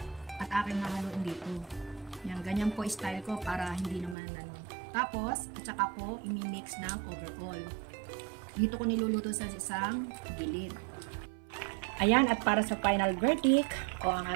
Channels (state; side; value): drops out; left; at 4.2 s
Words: At aking hahaluin dito. Yan, ganyan po style ko para hindi naman Tapos, at saka ko imi-mix ng overall. Dito ko niluluto sa isang gilid. Ayan, at para sa final verdict o ang